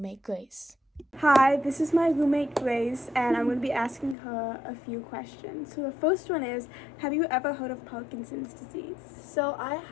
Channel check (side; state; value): right; drops out; at 4.2 s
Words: Grace. Hi, this is my roommate Grace, and I'm going to be asking her a few questions. So the first one is, have you ever heard of Parkinson's disease? So I